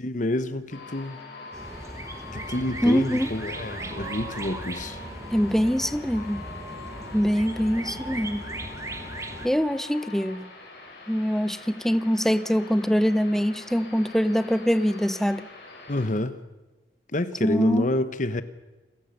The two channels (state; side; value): normal; both; correlation 0.88